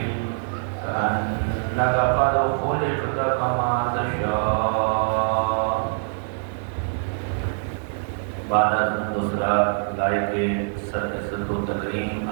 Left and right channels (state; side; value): silent; left; digital silence